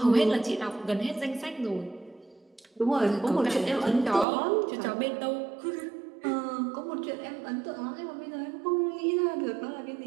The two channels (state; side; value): drops out; left; at 4.2 s